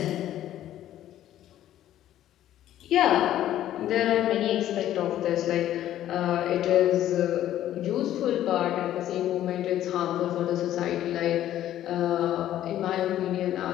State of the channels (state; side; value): quieter; right; 12.4 dB